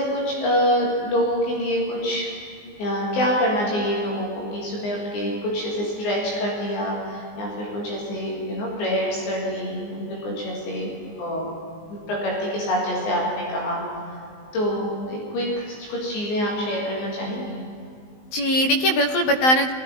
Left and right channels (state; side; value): late; right; 19 ms